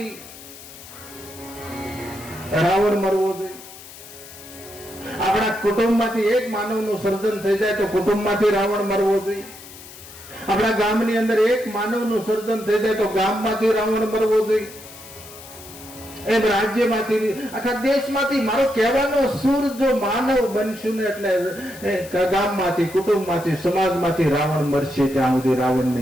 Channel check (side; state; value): left; noise; hiss, 17 dB below the sound